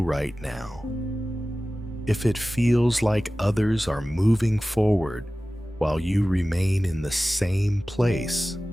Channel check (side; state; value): both; normal; correlation 0.96